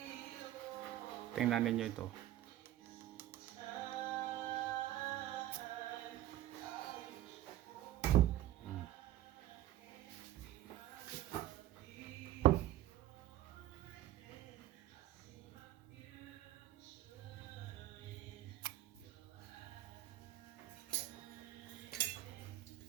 Tingnan ninyo ito.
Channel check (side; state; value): left; quieter; 13.8 dB